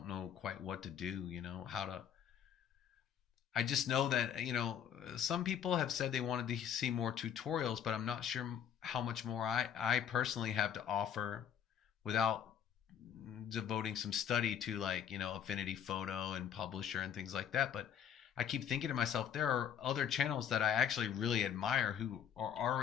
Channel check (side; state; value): right; quieter; 8.8 dB